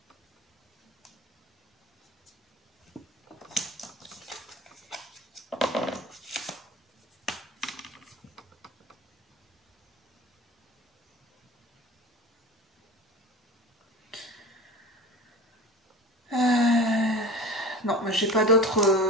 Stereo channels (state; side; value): normal; both; correlation 0.36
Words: Non, mais j'ai pas d'autres...